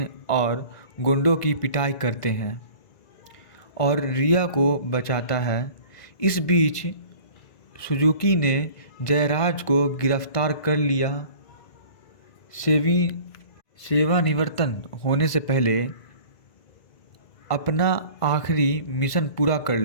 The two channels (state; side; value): late; right; 1.5 ms